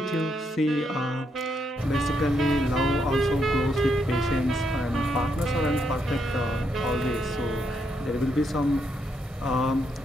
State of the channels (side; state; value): both; normal; correlation 0.78